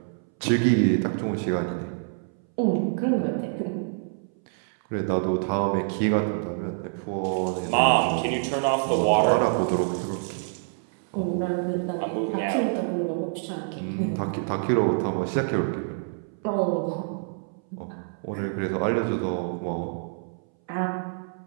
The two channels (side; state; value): left; silent; 61 dB below the other